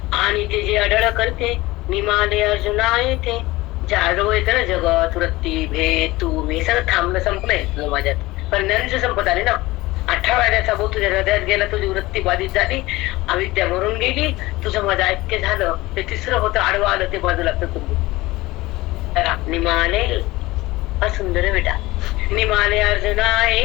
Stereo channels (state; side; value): quieter; right; 19.6 dB